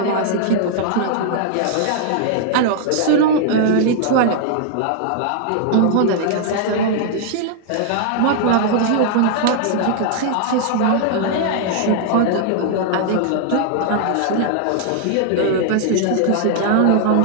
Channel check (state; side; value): different; both; correlation 0.00